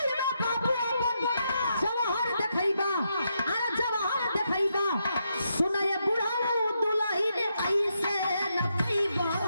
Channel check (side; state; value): both; inverted; correlation -0.81